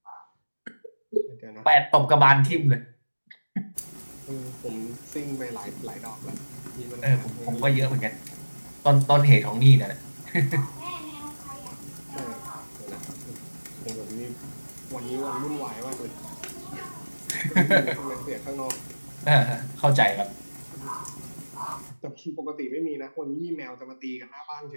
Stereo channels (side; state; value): both; inverted; correlation -1.00